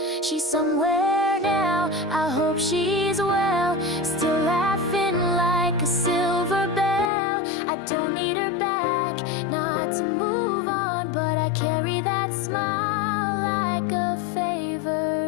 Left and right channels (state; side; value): drops out; right; at 7.1 s